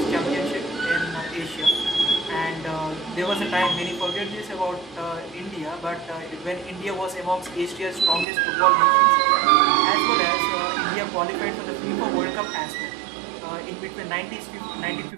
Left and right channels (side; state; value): left; drops out; at 8.2 s